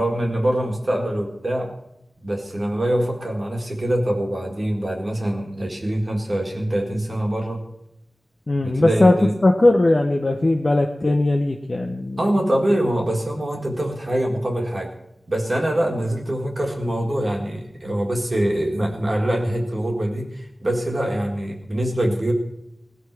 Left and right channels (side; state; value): both; normal; correlation 0.96